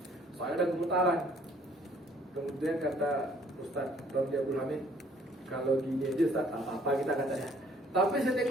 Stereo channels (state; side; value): normal; both; correlation 0.61